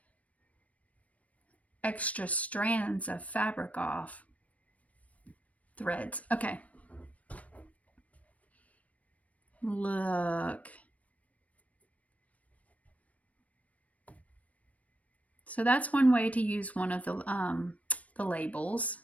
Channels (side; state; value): right; late; 0.068 ms